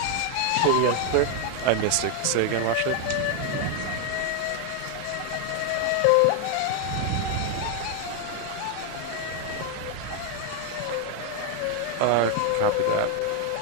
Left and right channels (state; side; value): different; both; correlation 0.01